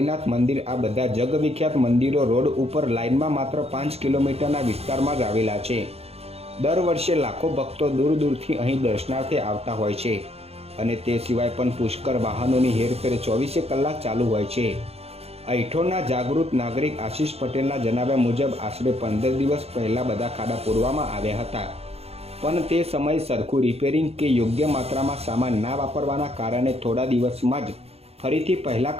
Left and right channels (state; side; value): late; left; 0.29 ms